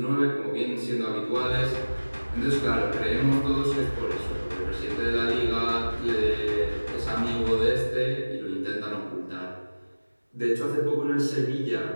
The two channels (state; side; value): inverted; both; correlation -1.00